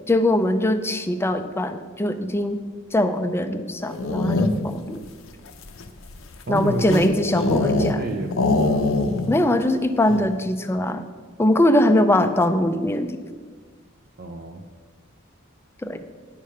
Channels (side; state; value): both; normal; correlation 0.68